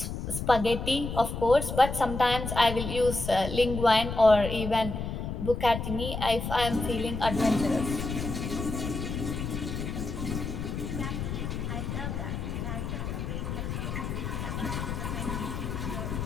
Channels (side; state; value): left; noise; rumble, 4 dB below the sound